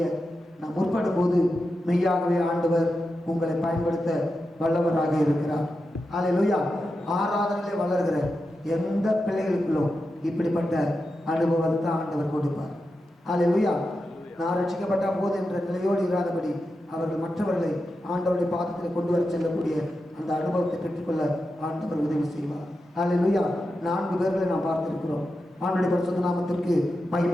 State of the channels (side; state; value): both; normal; correlation 0.89